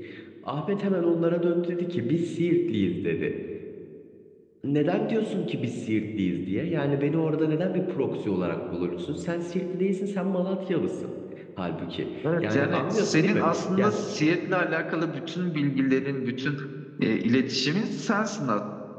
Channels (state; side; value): identical; both; correlation 1.00